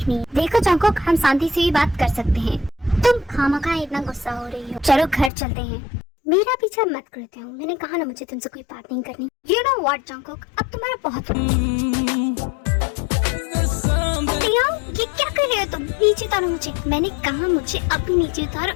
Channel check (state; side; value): drops out; right; at 5.3 s